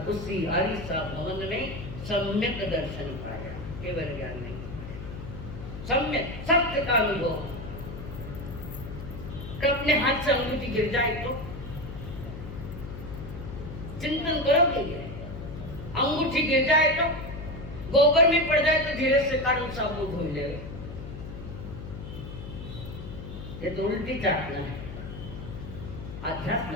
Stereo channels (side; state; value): left; noise; hum, 10 dB below the sound